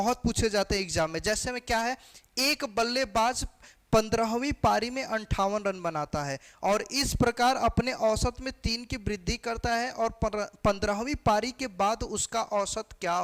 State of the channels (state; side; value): identical; both; correlation 1.00